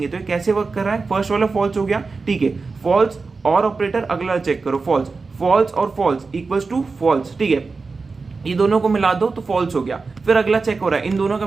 तो ये कैसे वर्क कर रहा है, फर्स्ट वाला फॉल्स हो गया, ठीक है, फॉल्स और ऑपरेटर, अगला चेक करो फॉल्स और फॉल्स इक्वल्स टू फॉल्स, ठीक है, ये दोनों को मिला दो तो फॉल्स हो गया। फिर अगला चेक हो रहा है इन दोनों का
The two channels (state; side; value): quieter; left; 4.2 dB